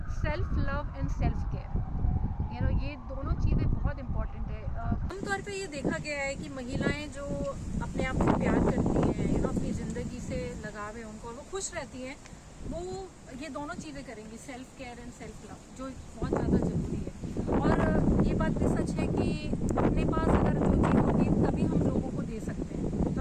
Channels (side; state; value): both; identical; correlation 1.00